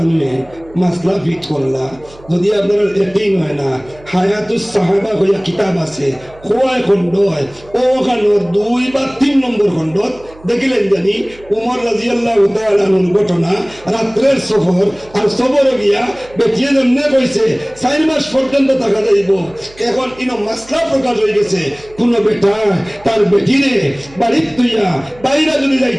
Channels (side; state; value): right; noise; hum, 23 dB below the sound